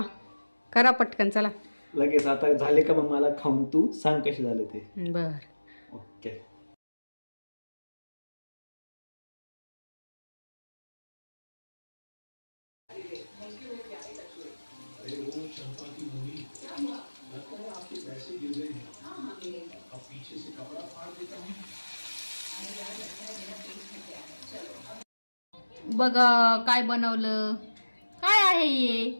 करा पटकन चला. लगेच आता झाले का मग मला खाऊन तू सांग कसे झाले ते. बर. ओके. बघा काय बनवलं. काय आहे हे?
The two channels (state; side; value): inverted; both; correlation -1.00